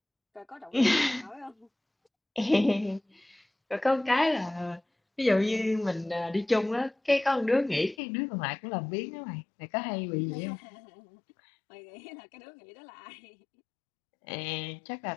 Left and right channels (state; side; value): drops out; right; at 8.0 s